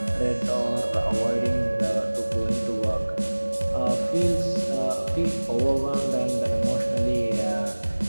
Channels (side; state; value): both; inverted; correlation -1.00